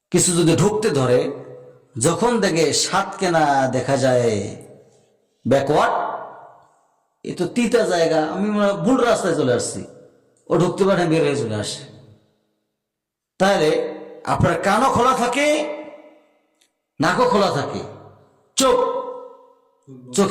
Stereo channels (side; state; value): both; identical; correlation 1.00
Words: কিছু যদি ঢুকতে ধরে, যখন দেখে সাত কেনা দেখা যায় ব্যাকওয়ার্ড, এ তো তিতা জায়গা, আমি ভুল রাস্তায় চলে আসছি, ও ঢুকতে পারে, বের হয়ে চলে আসে। তাহলে আপনার কানও খোলা থাকে, নাকও খোলা থাকে,